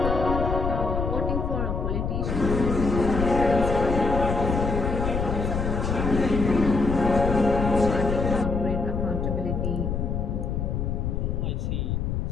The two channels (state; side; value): noise; left; rumble, 1 dB below the sound